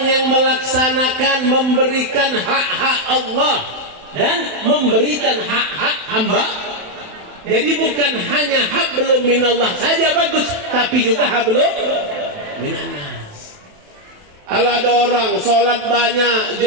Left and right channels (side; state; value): left; late; 28 ms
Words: yang melaksanakan, memberikan hak-hak Allah dan memberikan hak-hak hamba. Jadi bukan hanya hablum minallah saja bagus, tapi juga hablum minannas. Kalau ada orang sholat banyak,